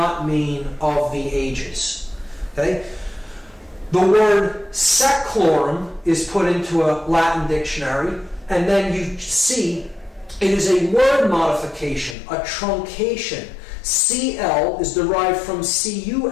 mean of the ages. Okay? The word seclorum is put into a Latin dictionary, and then you see it is a word modification, a truncation. CL is derived from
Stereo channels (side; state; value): right; drops out; at 12.2 s